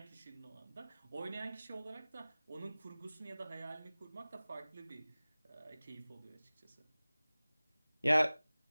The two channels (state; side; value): inverted; both; correlation -0.99